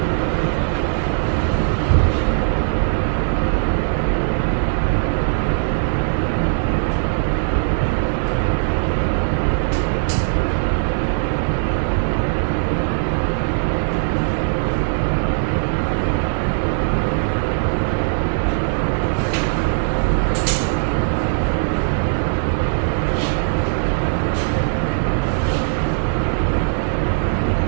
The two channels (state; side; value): silent; left; digital silence